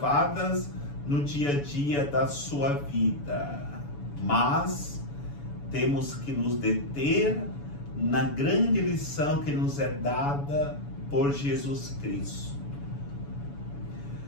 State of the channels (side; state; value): right; late; 7.0 ms